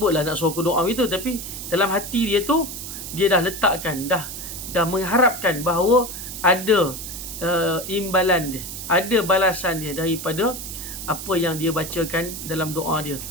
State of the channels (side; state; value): right; noise; hiss, 8 dB below the sound